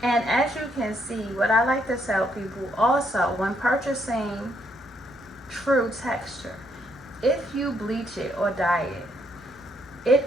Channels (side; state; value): both; normal; correlation 0.73